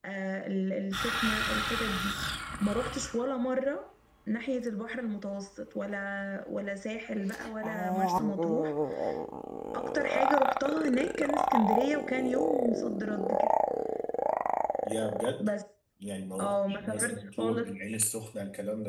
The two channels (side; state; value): both; identical; correlation 1.00